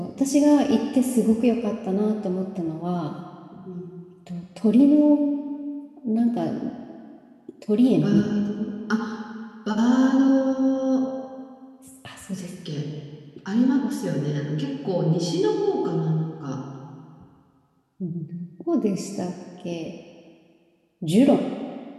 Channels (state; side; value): identical; both; correlation 1.00